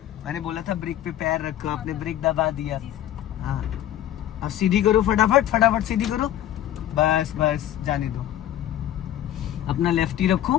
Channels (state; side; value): quieter; right; 12.2 dB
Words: मैंने बोला था ब्रेक पे पैर रखो, आपने ब्रेक दबा दिया। हाँ, अब सीधी करो, फटाफट फटाफट सीधी करो, बस बस, जाने दो। अपना लेफ्ट ही